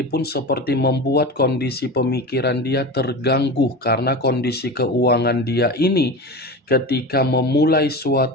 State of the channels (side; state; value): both; normal; correlation 0.28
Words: pun seperti membuat kondisi pemikiran dia terganggu, karena kondisi keuangan dia ini ketika memulai